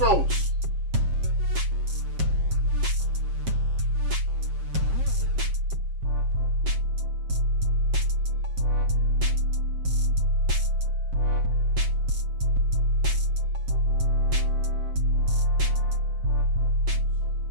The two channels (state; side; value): late; left; 7.5 ms